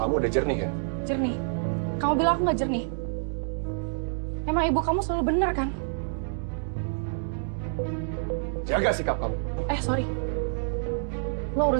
udah jernih ya? Jernih? Kamu bilang aku nggak jernih? Emang ibu kamu selalu benar kan? Jaga sikap kamu. Sorry. Lo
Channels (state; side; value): silent; left; digital silence